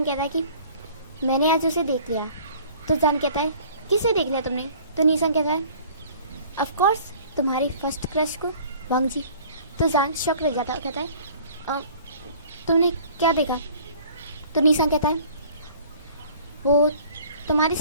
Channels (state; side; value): inverted; both; correlation -0.50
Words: कहता है कि मैंने आज उसे देख लिया। तो जान कहता है किसे देख लिया तुमने। तो निया सांग कहता है ऑफ कोर्स तुम्हारी फर्स्ट क्रश को, वांग जी। तो जान शॉक रह जाता है, कहता है तुमने क्या देखा। तो निया सांग कहता है वो तुम्हारे